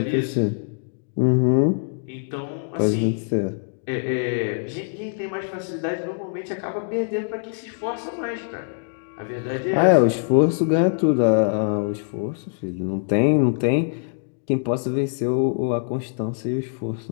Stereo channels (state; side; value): silent; right; digital silence